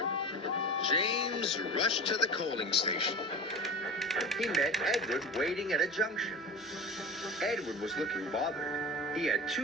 James rushed to the coaling station. He met Edward waiting at a junction. Edward was looking bothered. He had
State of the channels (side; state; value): both; normal; correlation 0.31